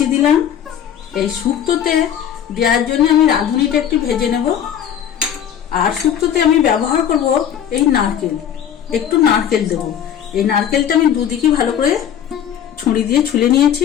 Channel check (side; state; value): right; quieter; 9.4 dB